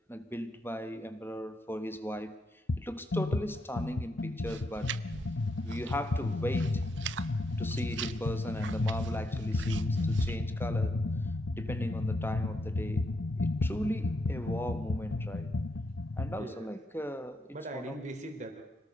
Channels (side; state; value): both; normal; correlation 0.80